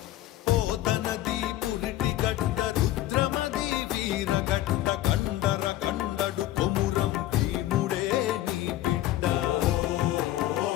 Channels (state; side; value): quieter; right; 14.6 dB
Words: పోతనది పురిటి గడ్డ రుద్రమది వీరగడ్డ కండర కండడు కొమురం భీముడే నీ బిడ్డ.